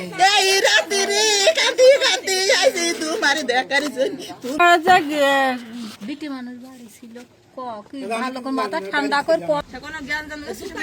এই রাতে রে কাঁদি কাঁদি আইছে তোমার দেখার জন্য বিটি মানুষ বাড়ি ছিল কি ভালো করে মাথা ঠান্ডা করে কোনো জ্ঞান জান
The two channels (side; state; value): both; identical; correlation 1.00